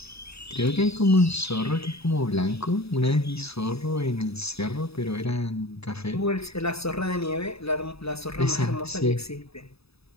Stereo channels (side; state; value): right; late; 0.78 ms